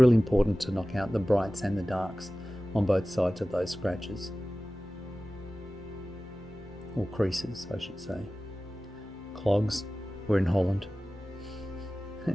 important to knock out the brights and the darks on both sides of those scratches. Or creases, I should say. Clogs, we're in Holland.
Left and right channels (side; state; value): both; normal; correlation 0.96